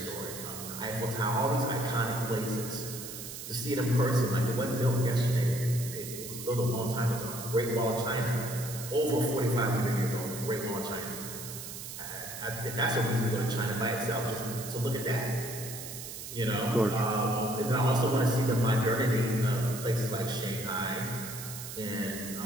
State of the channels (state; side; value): noise; right; hiss, 9 dB below the sound